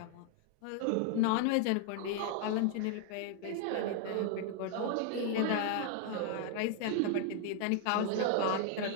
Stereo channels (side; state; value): both; different; correlation 0.00